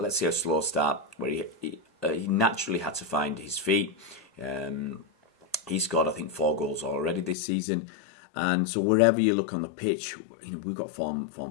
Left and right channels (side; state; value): right; drops out; at 7.4 s